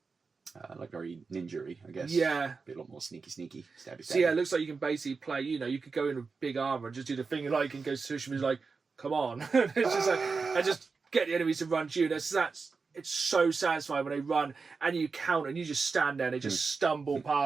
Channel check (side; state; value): left; quieter; 4.7 dB